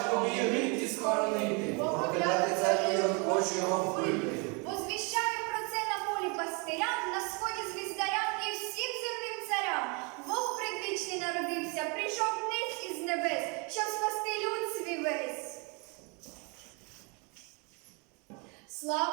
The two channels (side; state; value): left; quieter; 32.6 dB